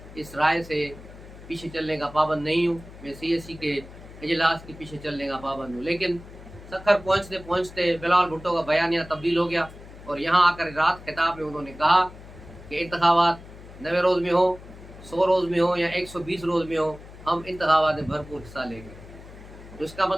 इस राय से पीछे चलने का पाबंद नहीं हूँ, मैं CSE के इजलास के पीछे चलने का पाबंद हूँ। लेकिन सखर पहुँचते पहुँचते बिलावल भुट्टो का बयानिया तब्दील हो गया और यहाँ आकर रात खिताब में उन्होंने कहा कि इंतखाबात 90 रोज़ में हो, 100 रोज़ में हो या 120 रोज़ में हो, हम इंतखाबात में भरपूर हिस्सा लेंगे। तो इसका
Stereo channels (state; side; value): noise; left; hum, 17 dB below the sound